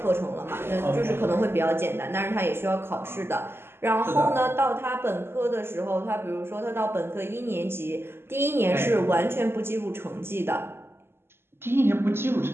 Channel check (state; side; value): late; left; 0.12 ms